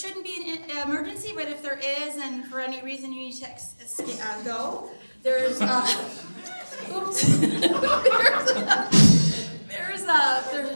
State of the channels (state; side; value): inverted; both; correlation -1.00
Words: be an emergency, but if there is, and for any reason you need to go, there's oops. there's a